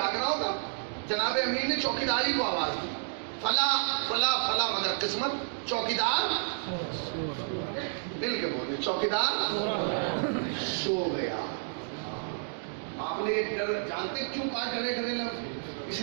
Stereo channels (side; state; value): left; silent; digital silence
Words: رہا ہوگا. جناب امیر نے چوکیداری کو آواز دی فلاں فلاں فلاں، مگر قسمت چوکیدار مل کے بولے چوکیدار سو گیا. آپ نے یہ ڈر جانتے کیوں کہا ڈرے ڈرے لفظ؟ اس